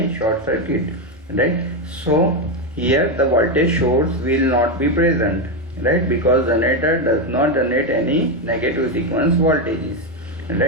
short circuit, right? So here the voltage source will not be present, right? Because generator does not generate any negative sequence voltages,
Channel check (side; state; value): both; normal; correlation 0.08